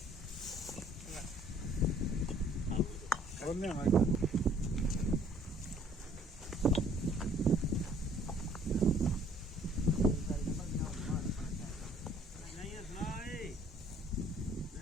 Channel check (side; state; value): both; normal; correlation 0.58